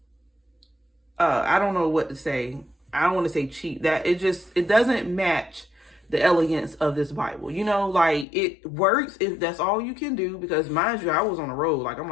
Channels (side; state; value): right; drops out; at 8.2 s